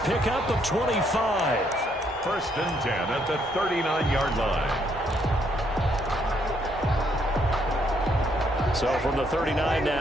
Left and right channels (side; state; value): both; normal; correlation 0.72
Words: pickup of 25. 1st and 10 at the 39-yard line. So from the 39